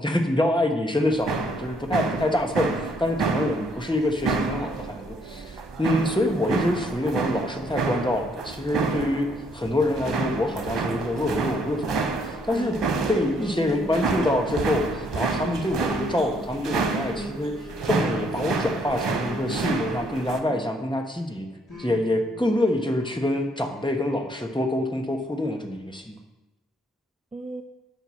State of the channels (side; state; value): both; normal; correlation 0.69